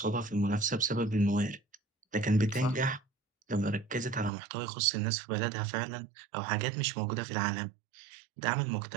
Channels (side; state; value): left; drops out; at 4.3 s